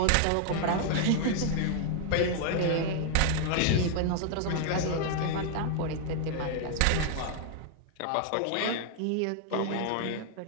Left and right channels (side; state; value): both; different; correlation 0.00